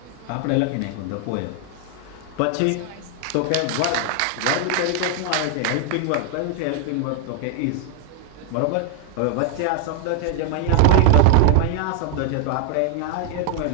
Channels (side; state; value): both; different; correlation 0.00